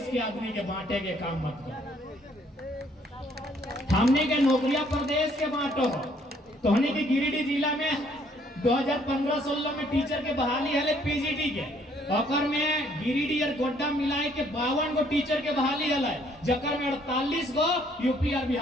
के आदमी के बांटे के काम मत करो। हमने के नौकरियां प्रदेश के बांटो। तो हमने के गिरिडीह जिला में 2015-16 में टीचर के बहाली है पीजीटी के, ओकर में गिरिडीह और गोड्डा मिलाए के 52 गो टीचर के बहाली है, जकर में 48 गो यूपी और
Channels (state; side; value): normal; both; correlation 0.64